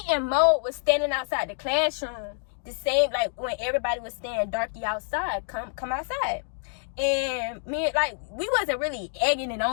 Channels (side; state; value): right; silent; digital silence